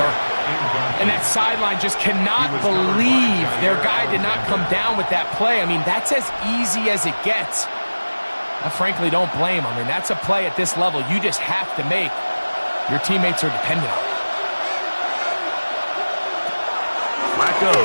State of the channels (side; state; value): both; inverted; correlation -1.00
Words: And that sideline just cannot believe their guy did not come down with that play. I mean, that's as easy as it gets. I frankly don't blame him. I mean, that's a play at this level you just have to make. Your teammates are dependent on it. Flacco